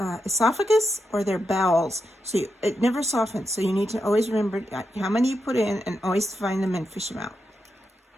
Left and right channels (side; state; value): both; normal; correlation 0.86